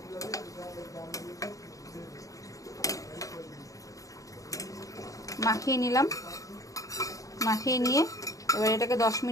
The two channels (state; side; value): late; right; 0.16 ms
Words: মাখিয়ে নিলাম। মাখিয়ে নিয়ে এবার এটাকে 10